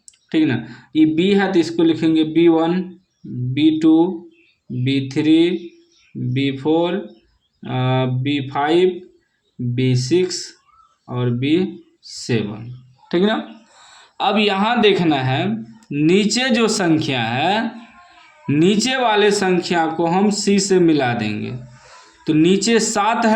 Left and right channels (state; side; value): identical; both; correlation 1.00